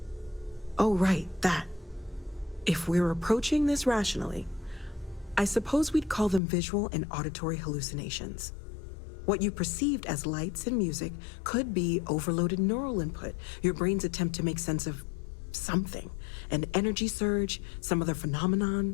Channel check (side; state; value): right; drops out; at 6.4 s